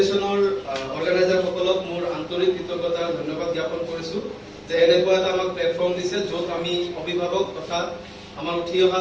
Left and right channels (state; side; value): identical; both; correlation 1.00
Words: অৰ্গেনাইজাৰসকলক মোৰ আন্তৰিক কৃতজ্ঞতা ধন্যবাদ জ্ঞাপন কৰিছো যে এনেকুৱা এটা আমাক প্লেটফৰ্ম দিছে য'ত আমি অভিভাৱক তথা আমাৰ উঠি অহা